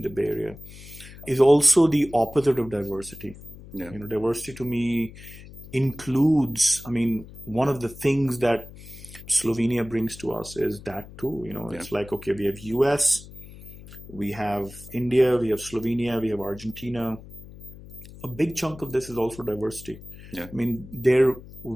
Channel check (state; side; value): noise; left; hum, 17 dB below the sound